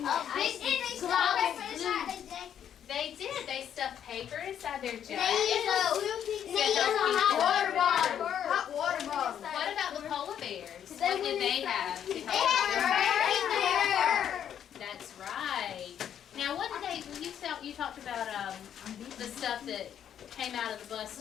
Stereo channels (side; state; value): right; quieter; 9.4 dB